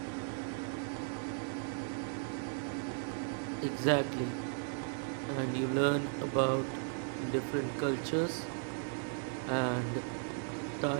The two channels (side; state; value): left; silent; 53 dB below the other